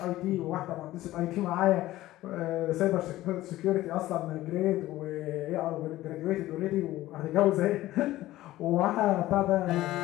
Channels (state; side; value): quieter; right; 15.9 dB